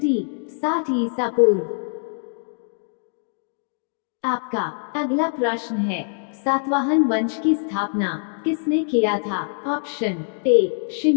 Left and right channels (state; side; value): silent; right; digital silence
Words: 60 ईसा पूर्व। आपका अगला प्रश्न है, सातवाहन वंश की स्थापना किसने किया था? Option A